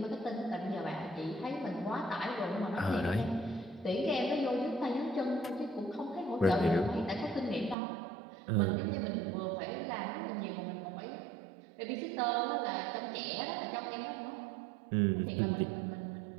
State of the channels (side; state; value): left; drops out; at 7.8 s